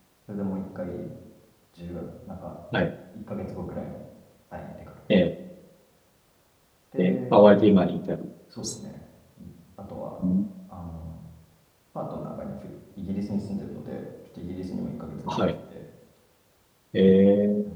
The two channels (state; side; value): identical; both; correlation 1.00